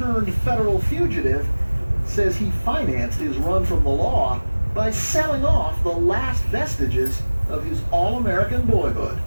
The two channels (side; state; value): both; inverted; correlation -1.00